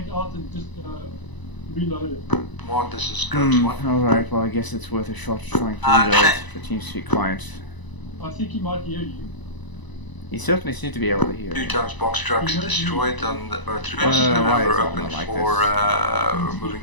out and just reloaded. One, this is Ghost 1. Alright, well I guess it's worth a shot trying to reload the TeamSpeak client. I think he might hear you. You certainly seem to be able to hear. 2 times box trucks destroyed on the road through why is we're it open not like for moving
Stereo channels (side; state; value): right; late; 1.0 ms